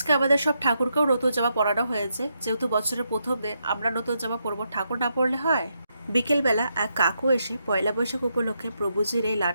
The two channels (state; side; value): inverted; both; correlation -0.81